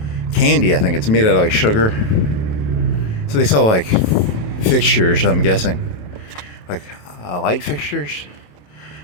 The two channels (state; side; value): late; right; 28 ms